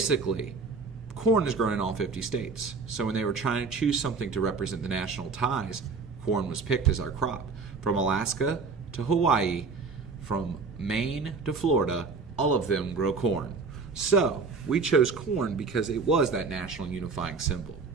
corn is grown in all 50 states. So when they were trying to choose something to represent the national ties, corn was picked as our crop. From Alaska to Hawaii, from Maine to Florida, all of them grow corn. So we chose corn because it was that national unifying symbol.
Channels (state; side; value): quieter; left; 4.5 dB